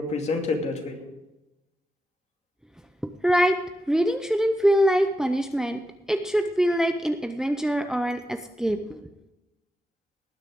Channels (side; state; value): both; normal; correlation 0.88